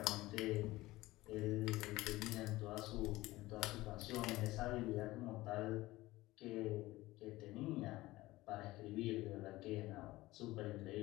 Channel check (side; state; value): right; quieter; 18.4 dB